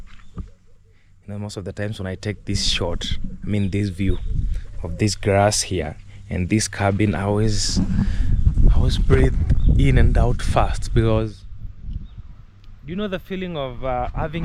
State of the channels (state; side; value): identical; both; correlation 1.00